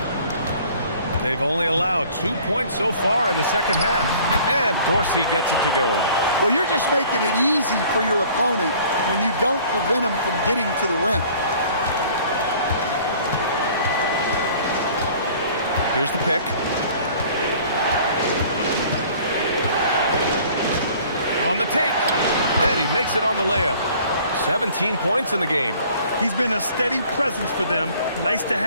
They've only allowed 2 points so far in the second half. And Dorsey gets it to go. Well, you're just making it easy for your opponent when you don't prevent them from getting to the rim. Here's the pick. On the take. And he makes it on the layup. 17 points in the game. He's been a steady presence for them. Nice to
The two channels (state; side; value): inverted; both; correlation -0.52